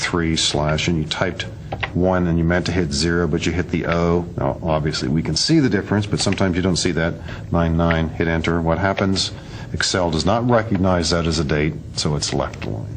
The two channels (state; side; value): identical; both; correlation 1.00